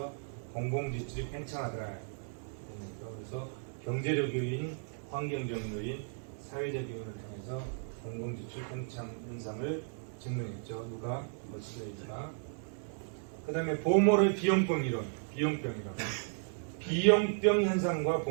공공지출이 팽창하더라. 그래서 경제적 요인, 환경적 요인, 사회적 요인을 통해서 공공지출 팽창 현상을 증명했죠. 누가? 머스크레이즈가. 그 다음에 보몰의 비용병 이론. 비용병 현상과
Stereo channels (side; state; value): left; silent; 55 dB below the other